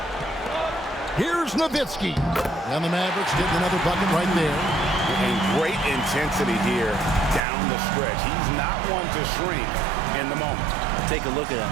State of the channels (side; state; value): left; drops out; at 7.4 s